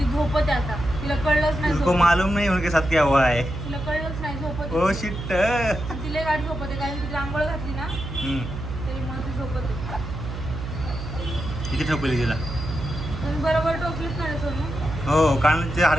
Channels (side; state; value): right; noise; hum, 7 dB below the sound